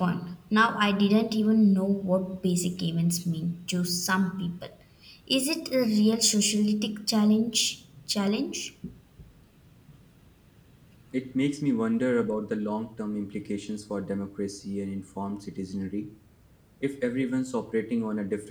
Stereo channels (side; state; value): both; identical; correlation 1.00